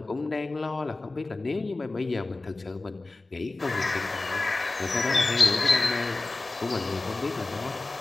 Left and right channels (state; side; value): quieter; right; 3.2 dB